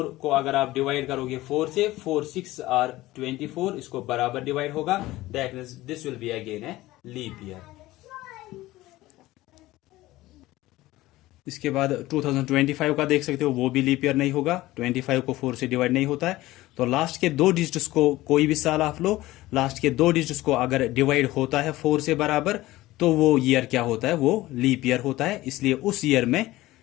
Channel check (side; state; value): right; quieter; 17.5 dB